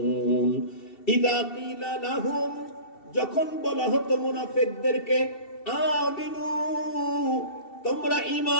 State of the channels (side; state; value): right; late; 2.7 ms